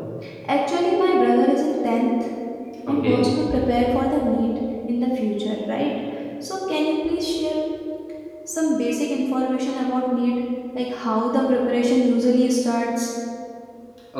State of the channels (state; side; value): identical; both; correlation 1.00